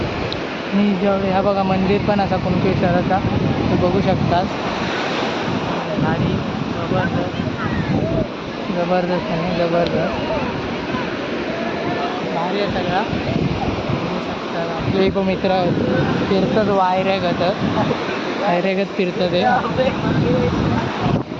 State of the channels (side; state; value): both; identical; correlation 1.00